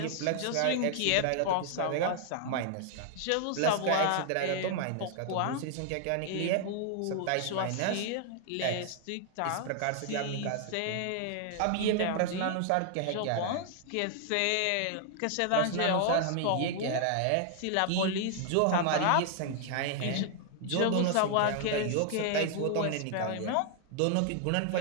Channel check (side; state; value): both; different; correlation 0.00